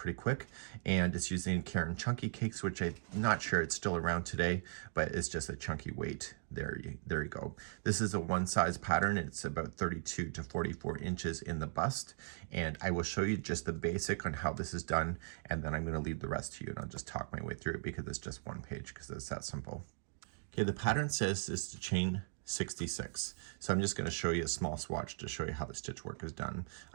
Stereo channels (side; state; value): left; silent; digital silence